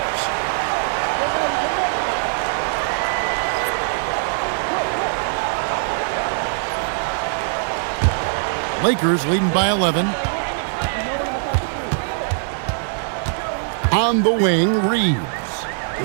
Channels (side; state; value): left; silent; digital silence